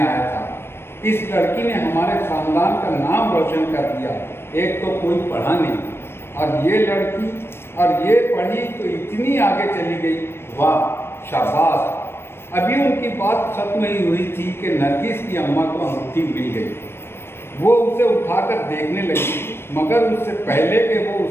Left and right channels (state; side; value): late; right; 0.12 ms